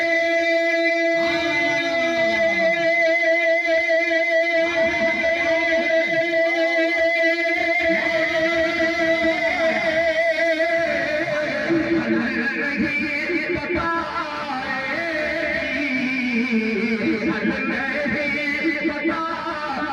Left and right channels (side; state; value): both; identical; correlation 1.00